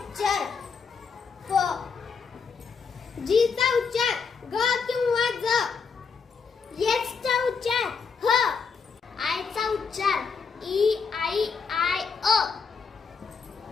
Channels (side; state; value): right; quieter; 5.5 dB